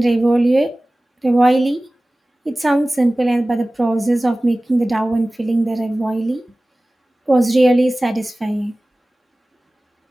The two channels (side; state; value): both; normal; correlation 0.98